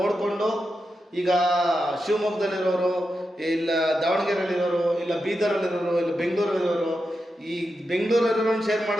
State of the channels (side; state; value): both; normal; correlation 0.88